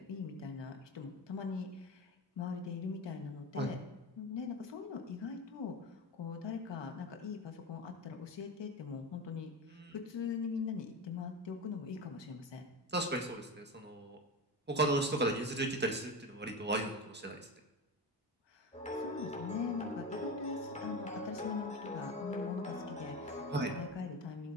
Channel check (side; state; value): both; normal; correlation 0.24